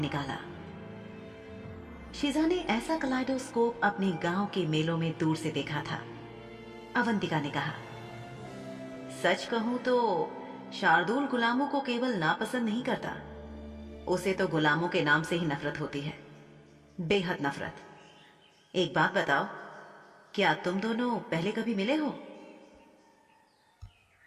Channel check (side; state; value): both; identical; correlation 1.00